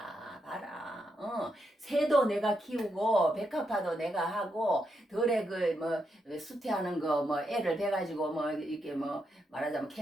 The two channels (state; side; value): normal; both; correlation 0.82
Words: 봐라. 새도 내가 키우고 백합화도 내가 하고 덜에 그 뭐 수태하는 거 뭐 애를 베가지고 뭐 이렇게 뭐 말하자면